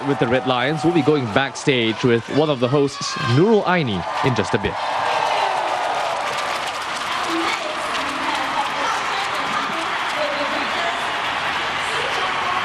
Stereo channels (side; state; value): both; identical; correlation 1.00